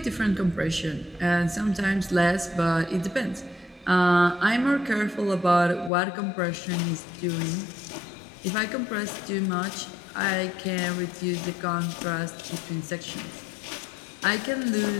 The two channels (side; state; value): right; drops out; at 5.9 s